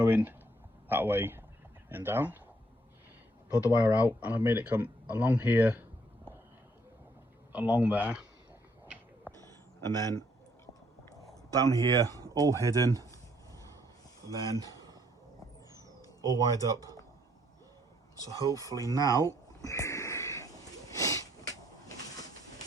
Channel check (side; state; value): both; normal; correlation 0.68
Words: that way and down, pulled the wire out, and I've made it come along here, along there, and then down here, all hidden, and then all wired up. So hopefully now,